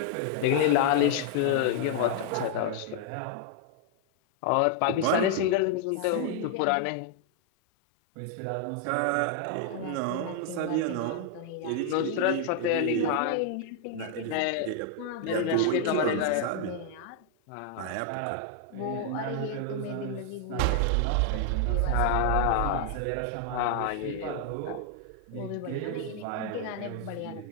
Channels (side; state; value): both; different; correlation 0.00